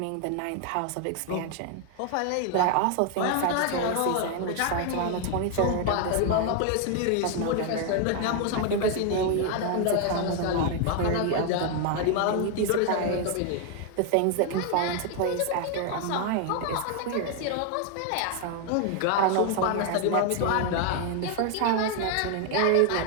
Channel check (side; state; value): both; different; correlation 0.01